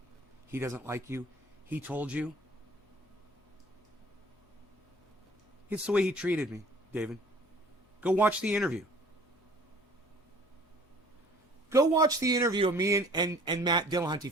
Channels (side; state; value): both; normal; correlation 0.52